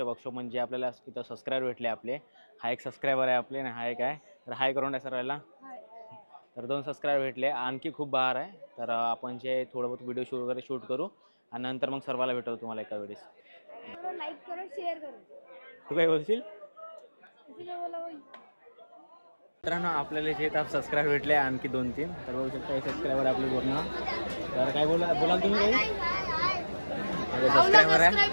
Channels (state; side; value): inverted; both; correlation -1.00